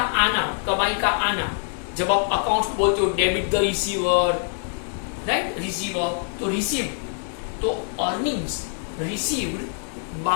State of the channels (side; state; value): right; silent; 62 dB below the other